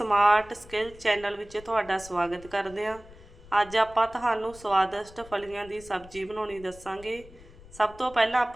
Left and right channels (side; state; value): left; noise; rumble, 20 dB below the sound